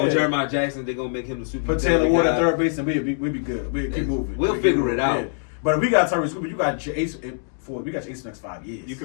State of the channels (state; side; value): silent; right; digital silence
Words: Jeremiah Jackson, they're gonna make him the super. Put Taylor Ward at guy. third base and we'll be good. We'll keep moving. We'll figure it out. Yeah. But if we got Tyrese Cooper, you got your ace for the next 5 years. You